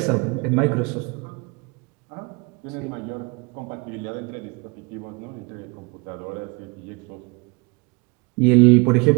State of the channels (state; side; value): quieter; left; 28.7 dB